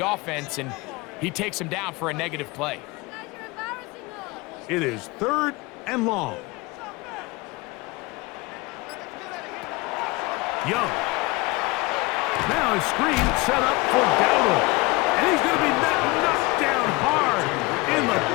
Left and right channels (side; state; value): right; quieter; 23.6 dB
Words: offense, and he takes him down for a negative play. It is 3rd and long. Young. Now a screen set up for Dowdle. And he's going to be knocked down hard in the